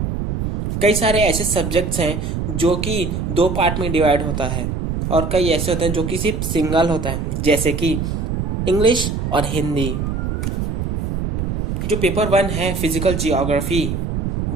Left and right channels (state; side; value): noise; right; rumble, 2 dB below the sound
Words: कई सारे ऐसे सब्जेक्ट्स हैं जो कि 2 पार्ट में डिवाइड होता है, और कई ऐसे होते हैं जो कि सिर्फ सिंगल होता है, जैसे कि इंग्लिश और हिंदी। जो पेपर 1 है फिजिकल जियोग्राफी,